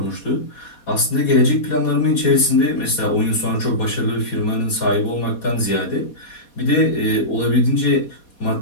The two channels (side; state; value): right; late; 4.2 ms